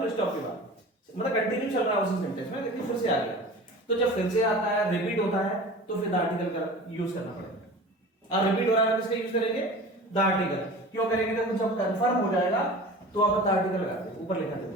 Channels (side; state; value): both; normal; correlation 0.38